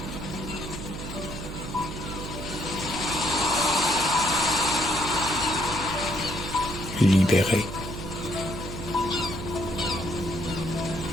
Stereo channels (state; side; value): noise; right; hum, 8 dB below the sound